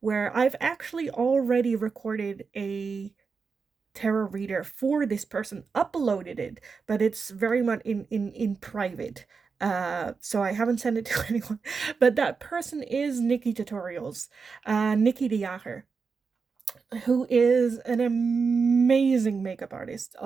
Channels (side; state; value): left; quieter; 5.1 dB